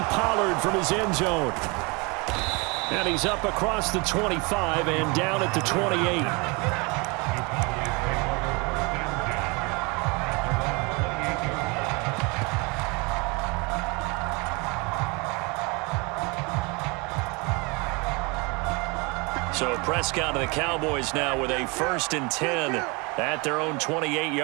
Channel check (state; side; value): quieter; left; 28.8 dB